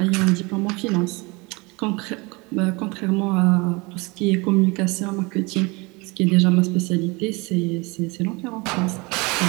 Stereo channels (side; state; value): left; quieter; 26.4 dB